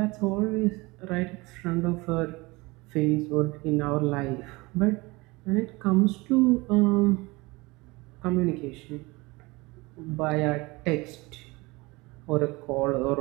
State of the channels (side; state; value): left; quieter; 23.6 dB